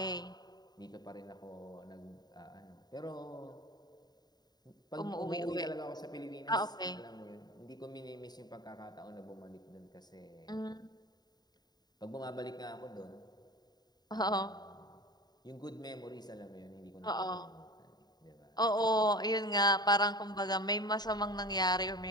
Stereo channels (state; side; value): late; right; 0.20 ms